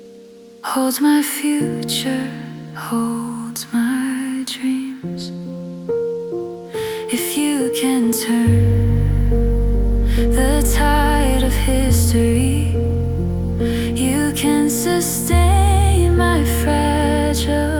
holds my future, holds my dreams. If you can turn the tide of history, you can sustain my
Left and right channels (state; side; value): identical; both; correlation 1.00